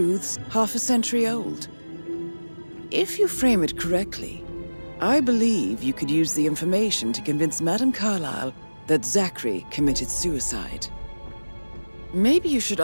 half a century old. If you frame it correctly, I believe you could use the information to convince Madame Carlyle that Zachary committed suicide. Maybe you should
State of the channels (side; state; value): both; inverted; correlation -1.00